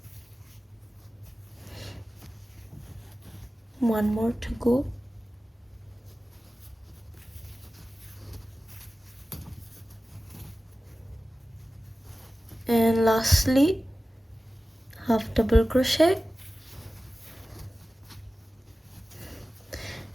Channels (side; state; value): both; normal; correlation 0.96